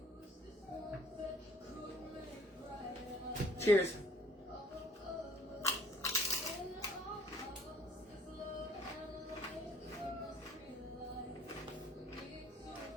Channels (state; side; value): normal; both; correlation 0.57